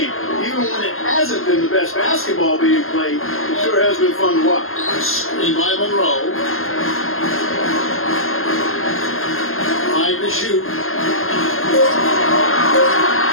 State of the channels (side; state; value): right; late; 0.61 ms